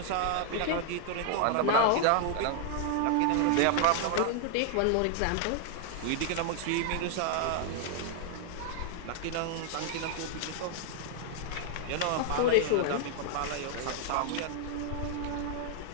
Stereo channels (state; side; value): different; both; correlation 0.00